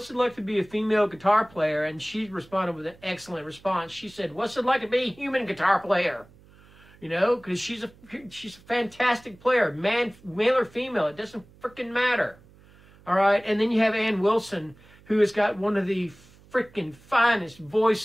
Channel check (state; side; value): noise; right; hum, 26 dB below the sound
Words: it like to be a female guitar player?" And she responded with an excellent response. She said, "What's it like to be a human guitar player?" You know, because she's a fantastic player, male or female, it doesn't freaking matter. All right, and then you have Ann Wilson, who has got one of the freaking finest